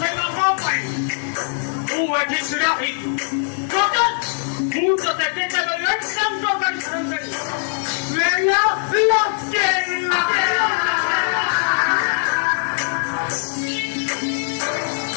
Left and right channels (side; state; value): right; silent; 65 dB below the other